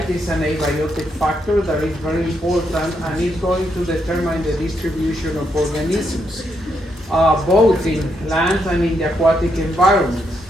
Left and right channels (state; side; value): normal; both; correlation 0.79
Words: is an abiotic factor that is very important and is going to determine the distribution of organisms, both in land and in the aquatic environment.